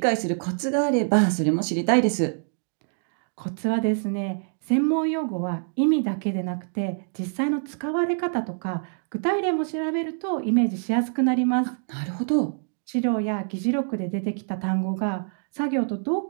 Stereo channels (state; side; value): silent; left; digital silence